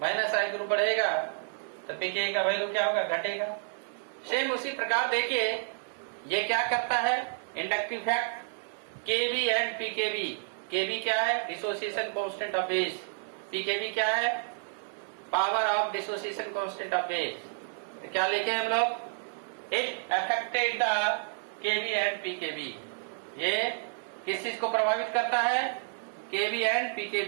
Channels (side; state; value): left; silent; digital silence